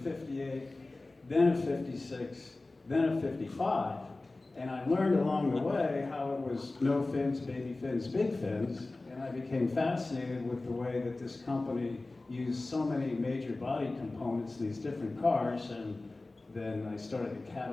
then a 56, then a 55. And I learned along the way how it was no fins, baby fins, big fins, and I became fascinated with the way that this company used so many major body components in these different cars, and then I started to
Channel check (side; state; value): right; quieter; 3.1 dB